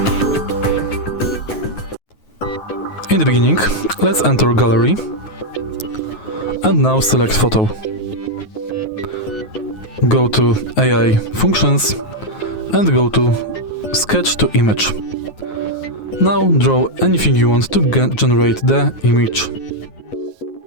In the beginning, let's enter Gallery and now select Photo. Go to AI Functions and go to Sketch to Image. Now draw anything you want to generate the image.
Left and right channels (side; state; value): right; late; 9.4 ms